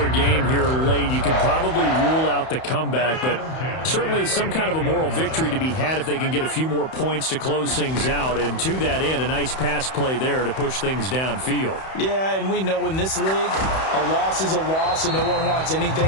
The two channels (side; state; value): right; late; 31 ms